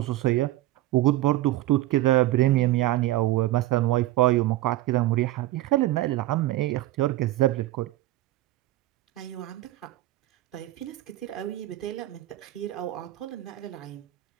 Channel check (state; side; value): quieter; left; 16.0 dB